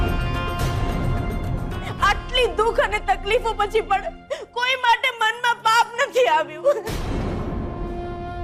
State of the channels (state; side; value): identical; both; correlation 1.00